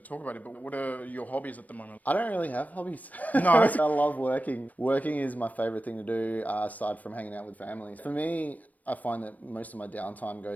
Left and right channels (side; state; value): right; late; 0.075 ms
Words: about it, but what are your hobbies at the moment? I don't really have hobbies. No. I love working. Working is my favorite thing to do, aside from hanging out with families. For me, I find that most of my downtime